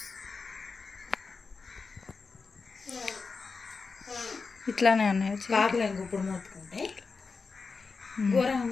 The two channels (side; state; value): right; quieter; 4.6 dB